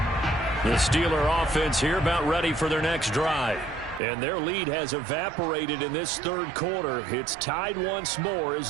The Steeler offense here about ready for their next drive. And their lead has evaporated in this 3rd quarter. It's tied once more as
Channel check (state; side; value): drops out; left; at 4.0 s